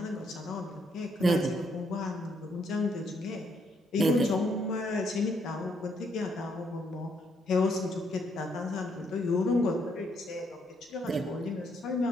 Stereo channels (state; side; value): normal; both; correlation 0.73